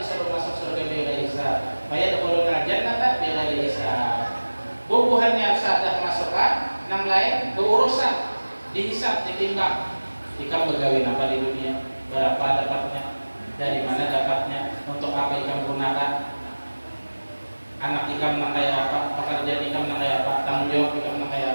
masuk surga bighairi hisab. Fayadkhuluna jannata bighairi hisab. Bubuhannya sadah masukkan, nang lain berurusan, dihisab, ditimbang. Ikam begawi apa di dunia? Berapa dapatnya? Dari mana dapatnya? Untuk apa ikam gunakan? Anak ikam nang kayak apa? Pekerjaan ikam nang kayak apa? Tanggung jawab ikam nang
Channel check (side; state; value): both; inverted; correlation -1.00